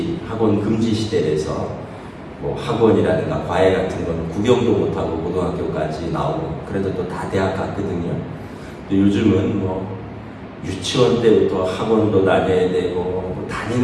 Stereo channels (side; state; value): both; identical; correlation 1.00